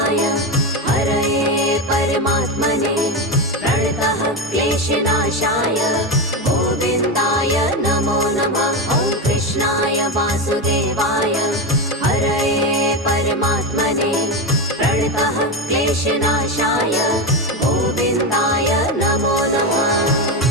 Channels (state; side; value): normal; both; correlation 0.15